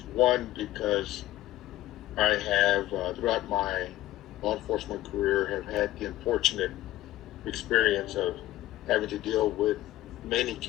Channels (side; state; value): right; quieter; 15.4 dB